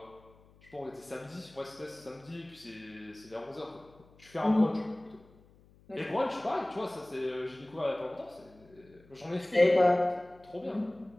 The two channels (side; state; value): left; noise; hum, 27 dB below the sound